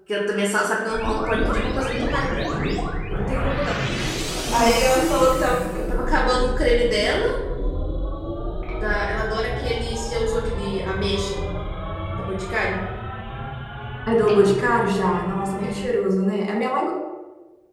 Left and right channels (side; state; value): both; identical; correlation 1.00